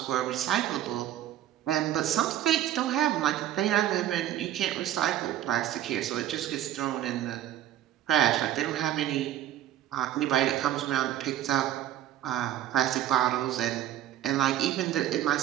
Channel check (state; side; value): quieter; left; 12.3 dB